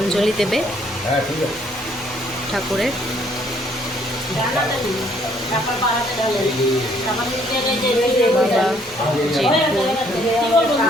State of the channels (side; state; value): both; normal; correlation 0.65